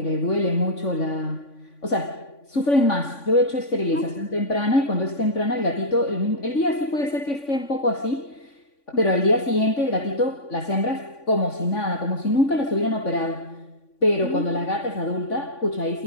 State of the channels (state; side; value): late; right; 3.5 ms